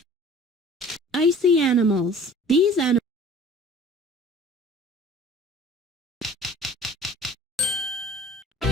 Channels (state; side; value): normal; both; correlation 0.47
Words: Icy animals. These animals